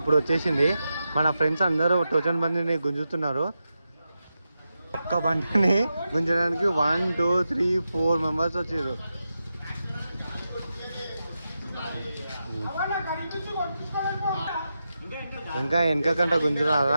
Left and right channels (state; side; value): inverted; both; correlation -0.89